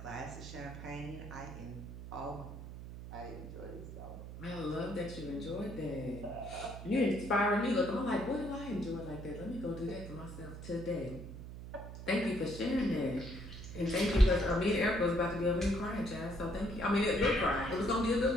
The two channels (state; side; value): noise; right; hum, 11 dB below the sound